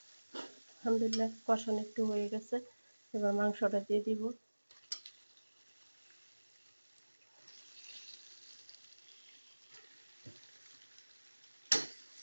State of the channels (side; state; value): both; inverted; correlation -1.00